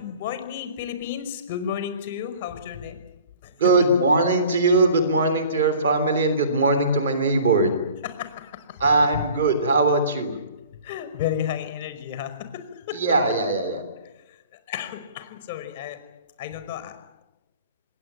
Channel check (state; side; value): inverted; both; correlation -0.47